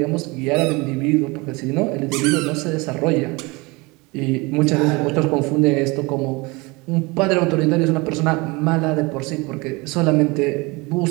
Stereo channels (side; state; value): left; quieter; 25.3 dB